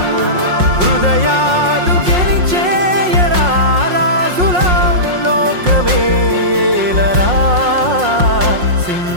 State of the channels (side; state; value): left; late; 5.6 ms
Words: హృదయాలు గెలిచేయరా రాజుల లోకమే ఏలరా